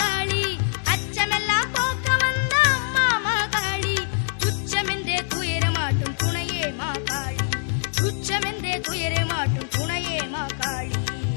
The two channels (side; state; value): right; silent; 59 dB below the other